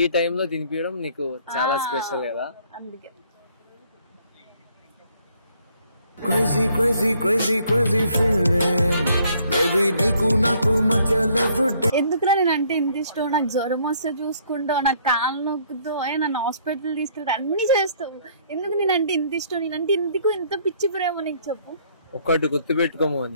టైంలో తినిపించడం నీకు చాలా స్పెషల్ కదా, అందుకే. Crazy, crazy, crazy, crazy feeling. Baby, నీకు నాకు మధ్య love day. ఎందుకురా నేను అంటే ఇంత ఇష్టం? నాకు జ్వరం వస్తే చూసుకుంటావు, నాకు కాళ్ళు నొక్కుతావు, నన్ను హాస్పిటల్ తీసుకెళ్తా, అన్ని చేస్తావు. ఎందుకు నేనంటే ఇంత ఇష్టం? నేనంటే ఇందుకు ఇంత పిచ్చి ప్రేమ నీకు చెప్పు. ఒక్కటి గుర్తుపెట్టుకోము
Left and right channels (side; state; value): both; inverted; correlation -0.63